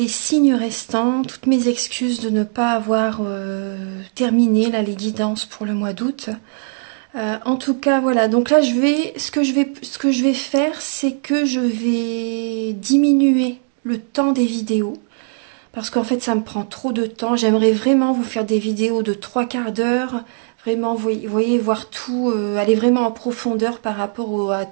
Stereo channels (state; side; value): silent; left; digital silence